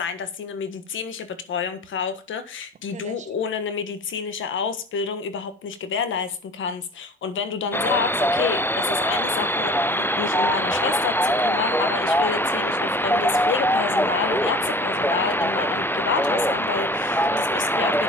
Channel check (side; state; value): both; normal; correlation 0.41